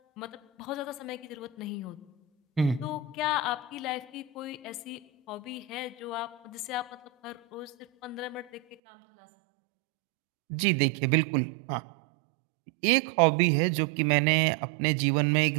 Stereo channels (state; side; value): drops out; left; at 8.8 s